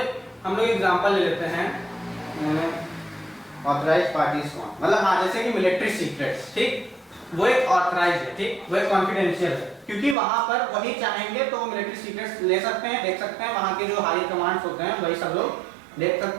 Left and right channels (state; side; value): drops out; left; at 10.2 s